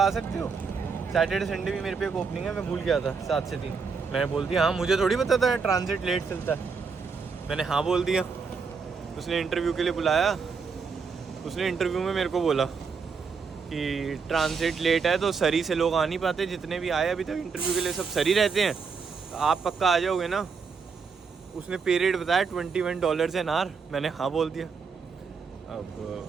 सकते हो। सैटरडे संडे भी मेरे पे एक ओपनिंग है, मैं भूल गया था 7 से 3। मैंने बोल दिया हाँ, मुझे थोड़ी पता था ट्रांजिट लेट चलता है। मैंने हाँ बोल दिया। उसने इंटरव्यू के लिए बुलाया। उसने इंटरव्यू में मेरे को बोला कि ट्रांजिट लेट है तो सरी से लोग आ नहीं पाते, जितने भी आए अभी तक इंटरव्यू के लिए सब सरी रहते हैं, तो आप पक्का आ जाओगे ना। उसने पे रेट बताया $21 एन आवर। मैंने हाँ बोल दिया। अब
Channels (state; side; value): quieter; left; 5.3 dB